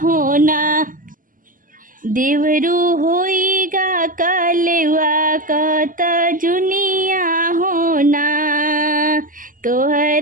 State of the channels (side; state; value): left; late; 0.39 ms